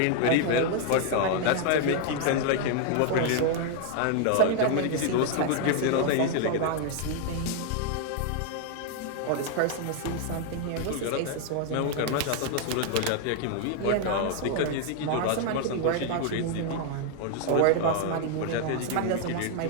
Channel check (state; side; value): different; both; correlation 0.00